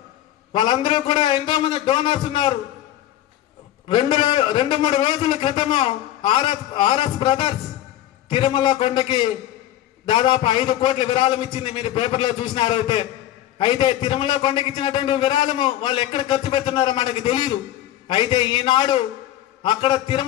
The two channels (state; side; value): quieter; right; 13.1 dB